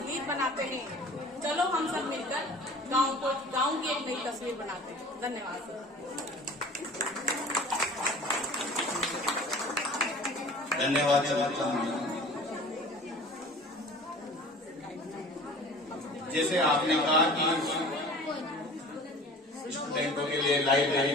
बनाते हैं, चलो हम सब मिलकर गांव की एक नई तस्वीर बनाते हैं। धन्यवाद। धन्यवाद। जैसे आपने कहा कि स्टूडेंटों के लिए लाइब्रेरी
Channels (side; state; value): both; normal; correlation 0.43